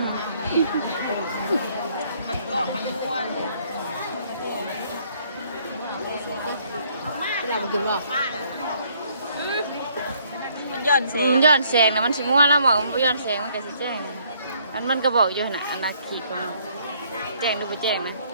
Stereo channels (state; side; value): inverted; both; correlation -0.64